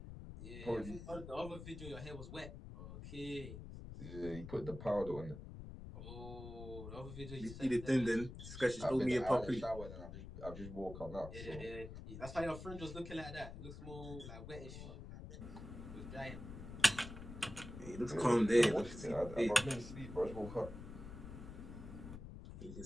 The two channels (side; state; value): left; noise; rumble, 10 dB below the sound